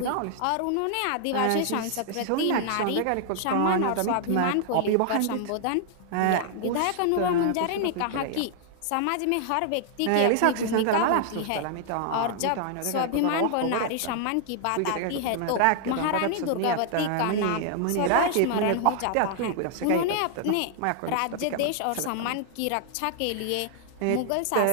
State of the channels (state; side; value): different; both; correlation 0.00